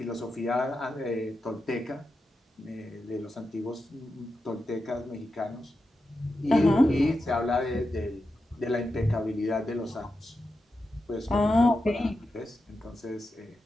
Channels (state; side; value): normal; both; correlation 0.89